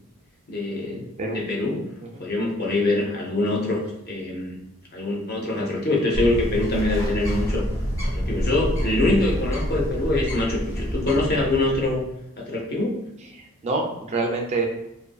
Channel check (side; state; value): both; normal; correlation 0.59